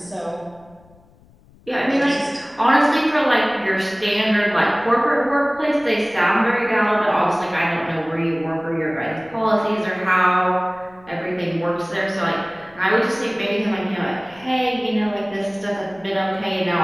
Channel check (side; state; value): left; noise; rumble, 28 dB below the sound